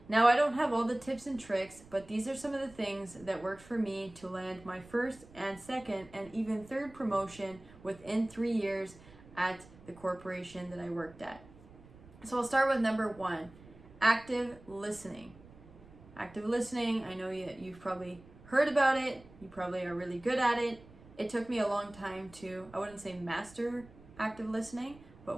Now I don't have all the tips and tricks, but these are some of the things that worked for me to land my first and second and even third promotion within 3 years at the corporation that I worked at. So I'll start with number 1, active listening. Active listening, I know you've probably heard about it, you probably are really good at it. It took me a long time to, I wouldn't say master active listening,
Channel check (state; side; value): noise; right; rumble, 22 dB below the sound